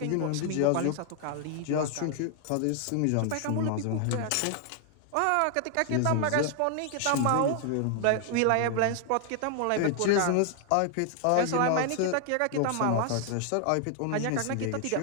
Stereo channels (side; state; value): both; different; correlation 0.00